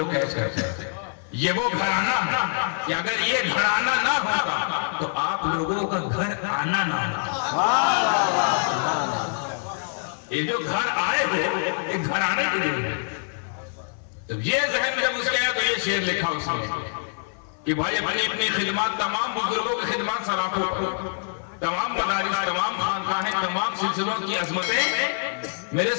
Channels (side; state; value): right; silent; 58 dB below the other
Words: कैच करते हैं, ये वो घराना है कि अगर ये घराना ना होता तो आप लोगों का घर आना ना होता। ये जो घर आए हो ये घराने के लिए, तो ये जहन जब उसके आया तो ये शेर लिखा उसने कि भाई अपनी अपनी खिदमत, तमाम बुजुर्गों की खिदमत सराखों पर, तमाम मदारिस, तमाम खानकाहें, तमाम सिलसिलों की अजमतें मेरे